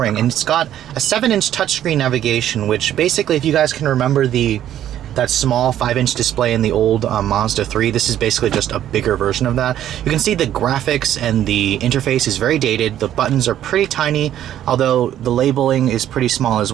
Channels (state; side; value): quieter; left; 11.4 dB